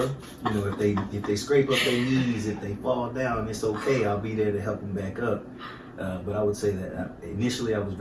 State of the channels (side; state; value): both; identical; correlation 1.00